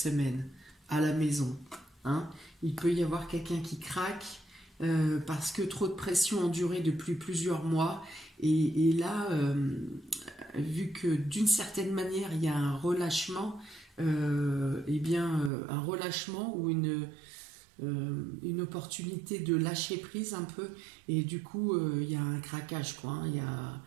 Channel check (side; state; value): left; drops out; at 15.5 s